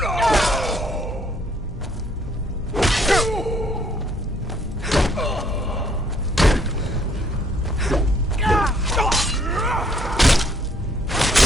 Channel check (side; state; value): both; normal; correlation 0.65